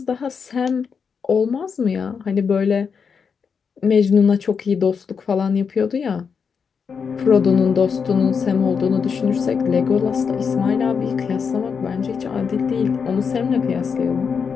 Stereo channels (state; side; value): quieter; right; 6.1 dB